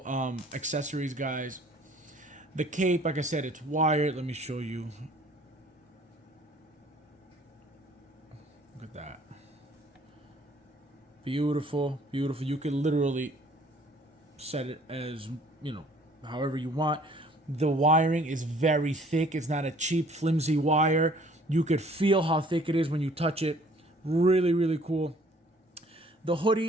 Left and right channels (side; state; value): both; normal; correlation 0.56